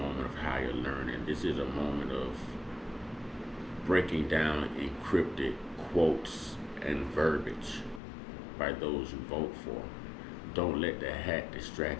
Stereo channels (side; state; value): right; drops out; at 8.0 s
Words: of higher learning. This is a moment of breaking down encrypted quotes and verbiage by those you vote for. Don't let the hat